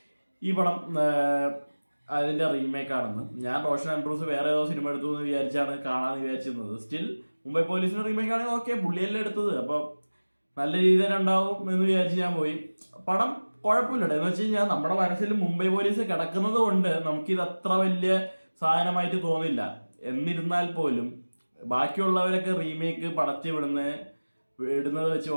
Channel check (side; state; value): both; inverted; correlation -1.00